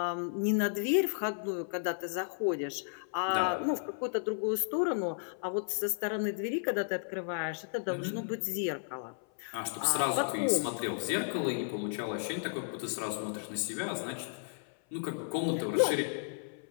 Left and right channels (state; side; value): silent; right; 55 dB below the other